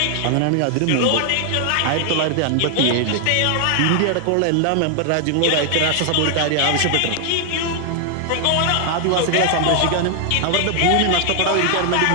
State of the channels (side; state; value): both; different; correlation 0.00